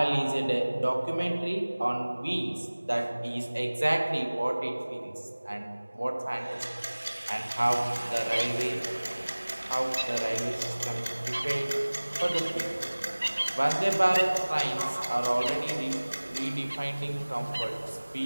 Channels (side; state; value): both; inverted; correlation -1.00